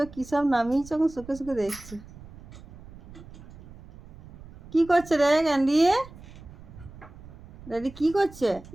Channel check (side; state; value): right; noise; rumble, 18 dB below the sound